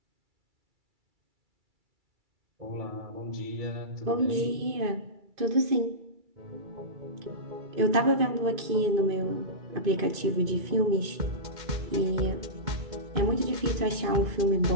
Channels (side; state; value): left; late; 2.5 ms